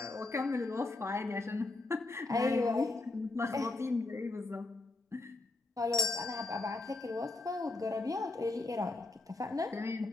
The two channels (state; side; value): quieter; right; 3.1 dB